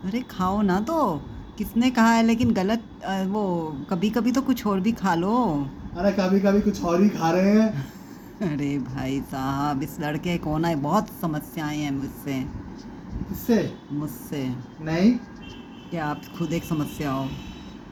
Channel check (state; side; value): identical; both; correlation 1.00